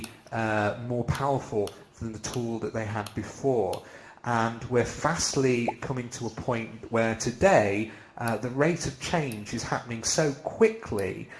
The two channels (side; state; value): both; identical; correlation 1.00